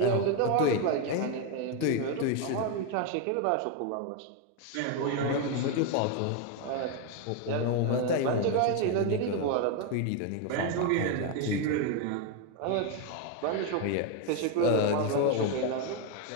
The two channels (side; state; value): both; different; correlation 0.01